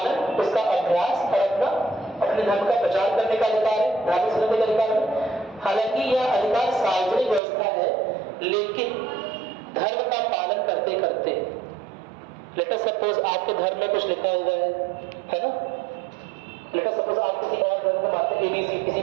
उसका अभ्यास और अपने धर्म का प्रचार करने का अधिकार है, धार्मिक स्वतंत्रता का अधिकार है। हालांकि यह अधिकार सार्वजनिक व्यवस्था है, लेकिन धर्म का पालन करते करते, लेट अस सपोज आपके धर्म में कुछ लिखा हुआ है ना, लेट अस सपोज आप किसी और धर्म को मानते हैं, ABC किसी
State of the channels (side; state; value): left; drops out; at 7.4 s